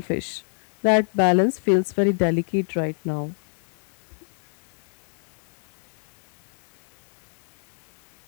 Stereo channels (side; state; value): right; silent; 58 dB below the other